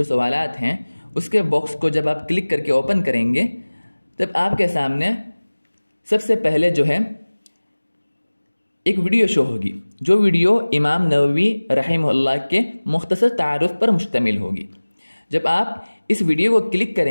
सवालात हैं उसके बॉक्स को जब आप क्लिक करके ओपन करेंगे तब आपके सामने सबसे पहले जो है एक वीडियो शो होगी, जो वीडियो इमाम नववी रहमहुल्लाह के मुख्तसर तारुफ पर मुश्तमिल होगी। जब आप इस वीडियो को क्लिक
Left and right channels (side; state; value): both; inverted; correlation -1.00